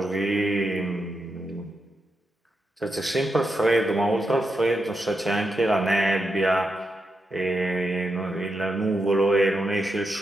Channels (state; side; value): normal; both; correlation 0.85